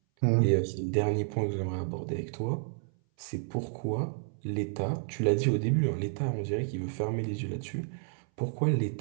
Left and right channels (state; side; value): silent; left; 57 dB below the other